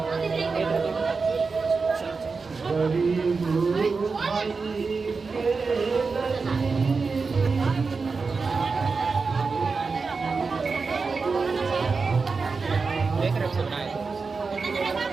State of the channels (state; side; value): quieter; left; 4.5 dB